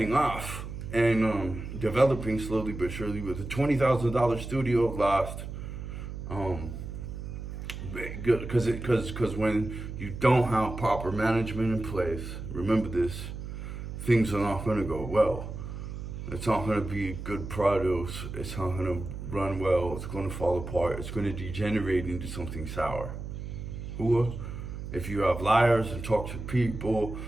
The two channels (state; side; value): noise; right; hum, 8 dB below the sound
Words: off and developing slowly but surely with a $20,000 studio lost. Because when you don't have proper management in place, remember this, things are not going to go well. It's not going to be good produce. It's not going to run well. It's going to fall apart. It's going to degenerate into something sour. Or if you have liars and toxic people